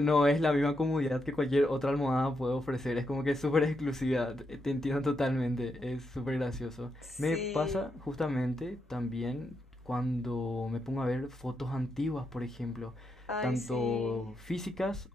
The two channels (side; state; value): both; normal; correlation 0.82